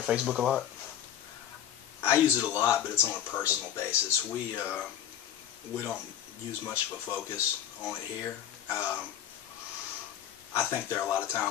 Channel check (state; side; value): quieter; right; 10.3 dB